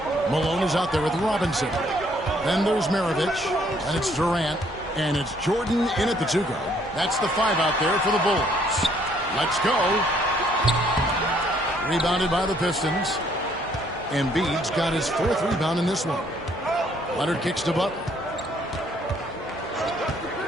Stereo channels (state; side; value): normal; both; correlation 0.65